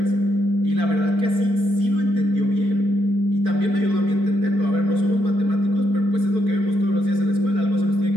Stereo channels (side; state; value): left; late; 4.6 ms